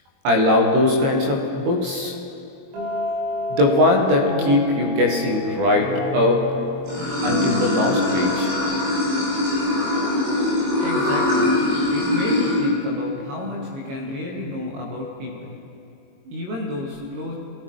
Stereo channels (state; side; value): late; left; 22 ms